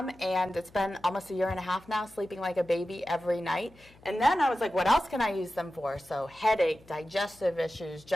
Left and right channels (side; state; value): left; noise; hum, 26 dB below the sound